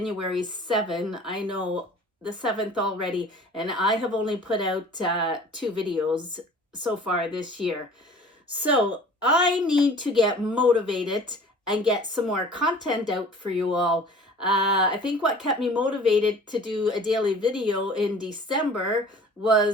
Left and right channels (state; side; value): normal; both; correlation 0.46